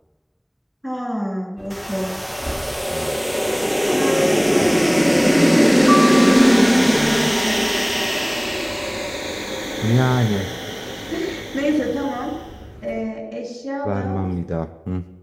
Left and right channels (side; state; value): both; identical; correlation 1.00